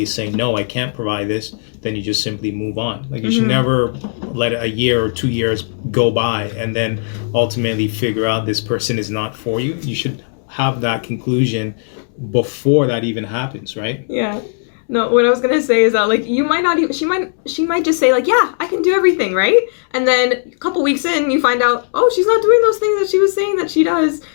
is saying, no, I can't provide this, then you just simply move on. Like, you should never let a year or 2 years go by and then ultimately figure out this person is not for you. You should have that conclusion before that even happens, right? Yeah. No, what I was gonna say is that, like, you might not even, she might just say, like, yeah, I can do everything, right? And then a couple weeks in, you find out, oh, she's not doing those things that she was saying that she does.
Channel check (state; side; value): silent; right; digital silence